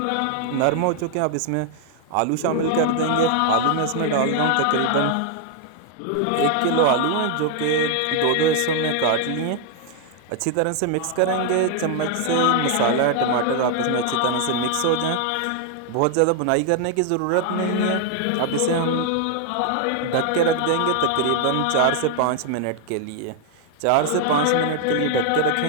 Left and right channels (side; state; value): both; different; correlation 0.00